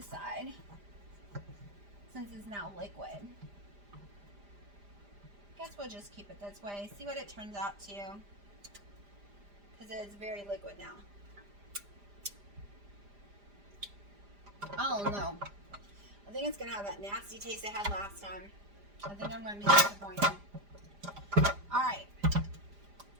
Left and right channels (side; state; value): left; late; 5.0 ms